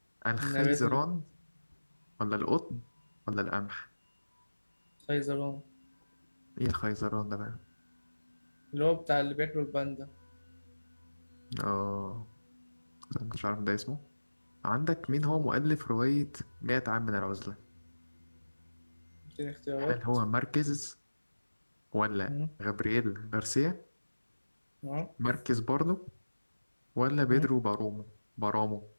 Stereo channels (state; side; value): inverted; both; correlation -1.00